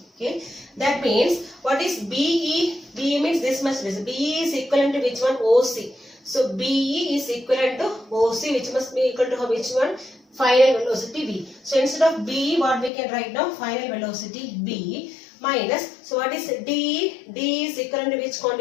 Okay, that means what is BE? BE means this much distance. BE is equivalent to which one? OC. So BE is equivalent to OC, which must be equal to which one? Final velocity V. So instead of BE, what we can write now? Final velocity B minus, so what is DE? DE is equivalent to which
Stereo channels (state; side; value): drops out; right; at 12.9 s